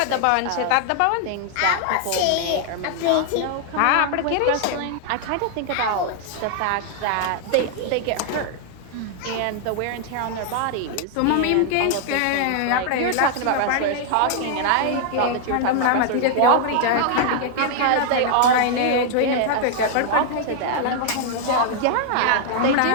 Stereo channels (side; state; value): both; different; correlation 0.00